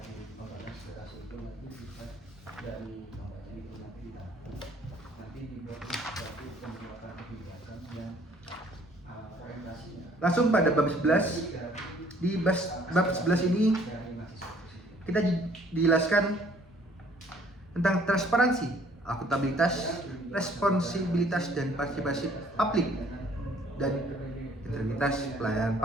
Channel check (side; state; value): both; normal; correlation 0.59